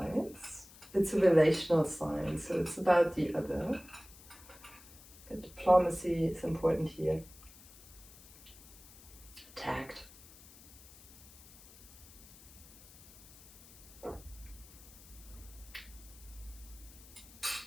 It's a relational sign, so it's about the other. Diplomacy is important here. Tact.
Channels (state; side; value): noise; left; hiss, 21 dB below the sound